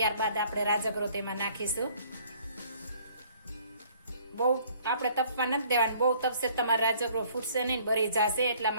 આપણે રાજગરો તેમાં નાખીશું. બહુ આપણે તપવા નથી દેવાની. બહુ તપશે તમારો રાજગરો ફૂટશે નહીં, બળી જશે. એટલા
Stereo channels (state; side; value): inverted; both; correlation -0.58